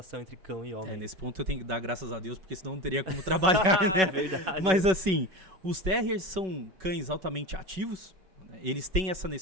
entre cão e homem. Nesse ponto eu tenho que dar graças a Deus, porque senão não teria como trabalhar, né? Mas assim, os terriers são cães altamente ativos, né? Eles têm essa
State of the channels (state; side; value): late; left; 5.3 ms